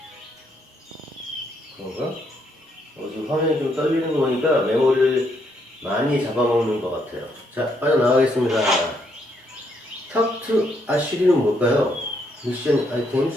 그런가? 지금 화면이 좀 떨리는 거 보니까 메모리를 많이 잡아먹는 것 같아요. 자, 빠져나가겠습니다. Talk to 아쉬리는 뭘까요? 미션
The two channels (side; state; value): both; normal; correlation 0.74